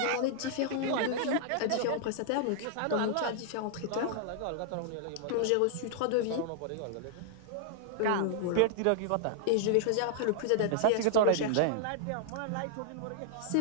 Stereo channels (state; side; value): different; both; correlation -0.01